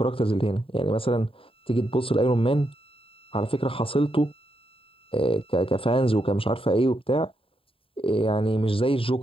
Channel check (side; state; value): right; late; 0.27 ms